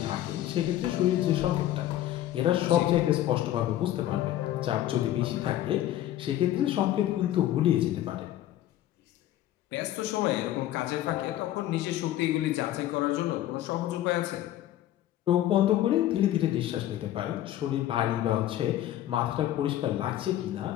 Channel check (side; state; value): right; quieter; 13.1 dB